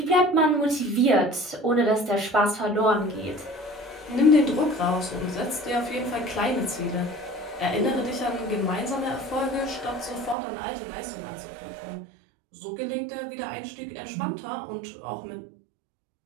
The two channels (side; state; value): left; drops out; at 10.4 s